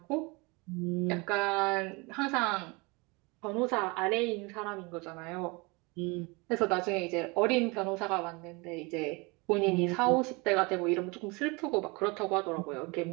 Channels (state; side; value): quieter; left; 27.1 dB